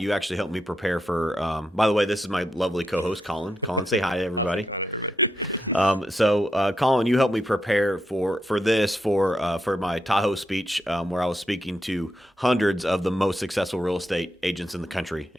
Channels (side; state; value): both; normal; correlation 0.83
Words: actually helped me prepare for, by the way, this is my lovely co-host, Colin. Colin, say hi to everybody. How's it going, everybody? So Colin, you helped me prepare for my Tahoe speech, where I was speaking to hundreds of the most successful real estate agents in the country.